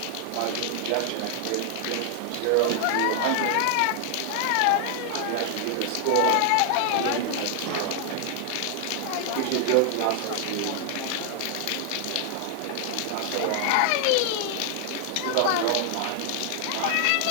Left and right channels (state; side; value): different; both; correlation 0.00